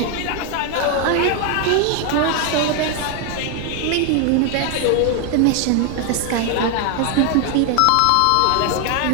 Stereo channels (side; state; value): both; different; correlation 0.01